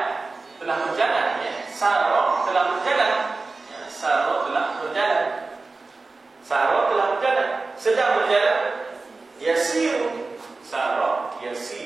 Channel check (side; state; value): left; quieter; 3.7 dB